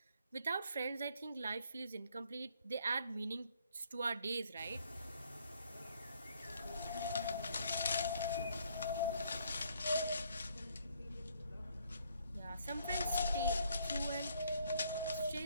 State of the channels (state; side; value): inverted; both; correlation -0.67